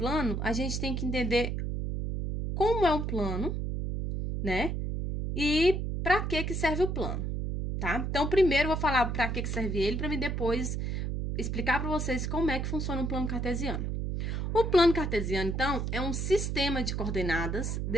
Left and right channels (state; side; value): noise; right; hum, 2 dB below the sound